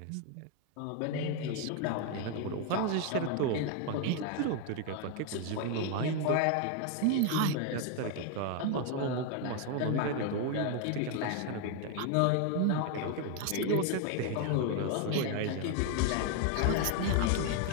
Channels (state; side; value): different; both; correlation 0.01